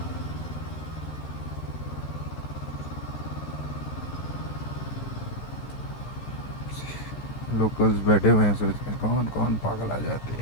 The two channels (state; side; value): late; right; 13 ms